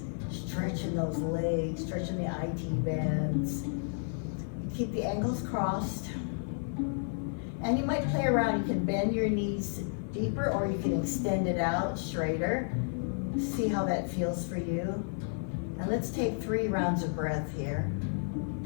stretch in those legs, stretching the IT bands. Keep the ankles crossed. And you might play around. You can bend your knees deeper, or you can extend it out straighter. See how that feels for you. And let's take 3 rounds of breath here.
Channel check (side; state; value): right; silent; 55 dB below the other